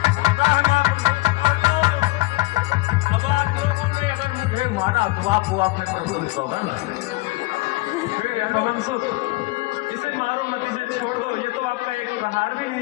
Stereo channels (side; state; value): right; quieter; 22.0 dB